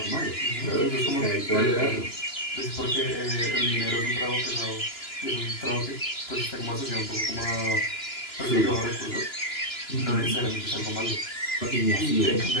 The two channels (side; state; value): right; late; 2.9 ms